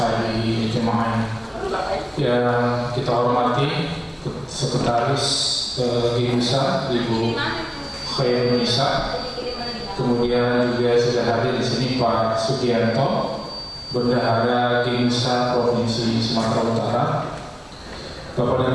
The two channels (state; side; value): identical; both; correlation 1.00